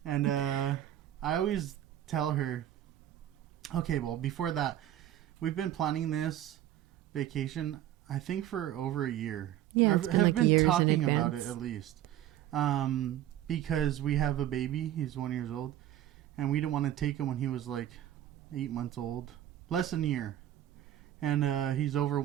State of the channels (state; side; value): quieter; left; 12.3 dB